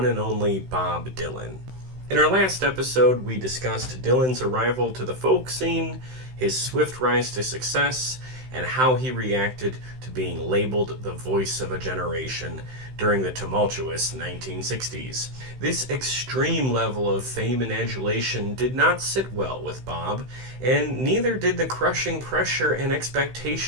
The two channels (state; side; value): late; left; 16 ms